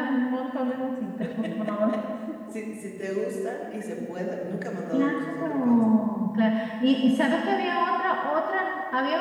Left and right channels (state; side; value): identical; both; correlation 1.00